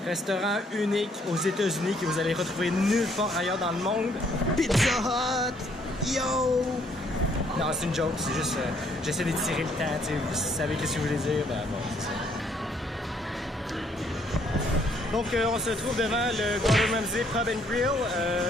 Restaurant unique aux États-Unis que vous allez retrouver nulle part ailleurs dans le monde. Pizza Hut! Yo! Non, c'est une joke, c'est juste j'essaie d'étirer le temps, tu sais, vous savez qu'est-ce que je voulais dire, ben bon, c'est ça. Donc on se trouve devant le Gordon Ramsay Pub and Grill.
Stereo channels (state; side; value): normal; both; correlation 0.67